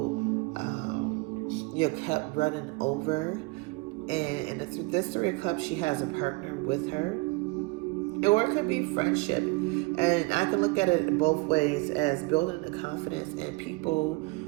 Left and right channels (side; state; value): left; quieter; 25.9 dB